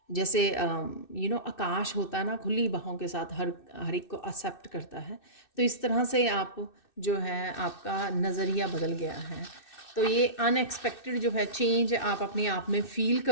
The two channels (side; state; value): right; late; 2.6 ms